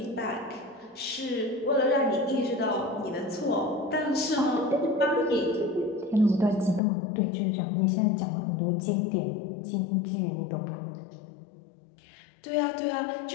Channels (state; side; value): drops out; right; at 6.8 s